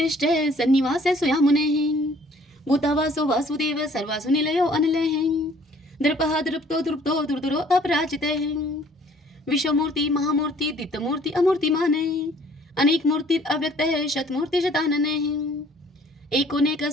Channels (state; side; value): normal; both; correlation 0.57